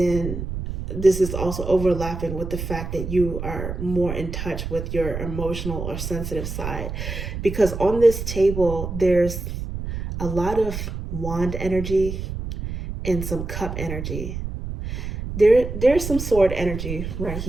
this is also overlapping with the fact that you are more in touch with your emotional or sensitive side. Because on this table, there's a lot of wand energy and some cup energy. There's some sword energy right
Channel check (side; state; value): right; noise; rumble, 6 dB below the sound